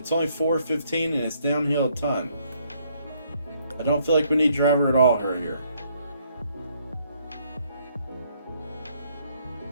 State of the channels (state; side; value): inverted; both; correlation -0.68